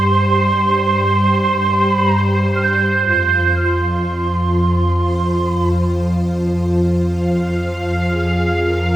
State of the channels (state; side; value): normal; both; correlation 0.89